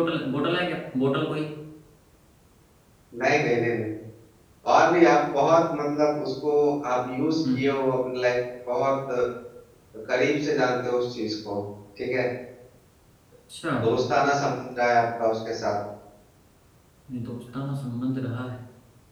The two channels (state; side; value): identical; both; correlation 1.00